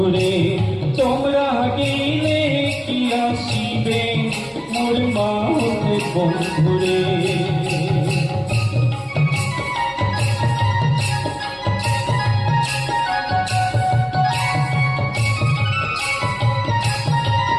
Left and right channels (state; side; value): identical; both; correlation 1.00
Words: তোমরা গেলে কি আসিবে মোর মাহুত বন্ধুরে